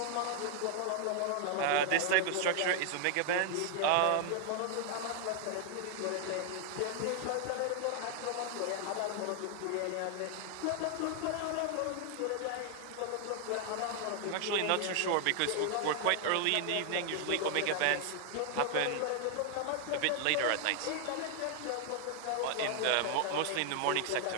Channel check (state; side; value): different; both; correlation 0.00